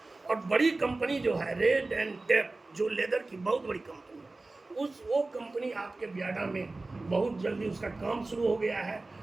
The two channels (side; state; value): left; quieter; 3.2 dB